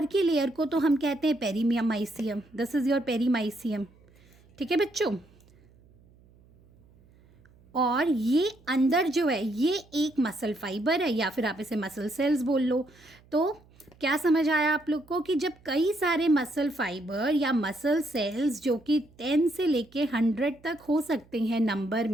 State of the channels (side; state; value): right; noise; hum, 28 dB below the sound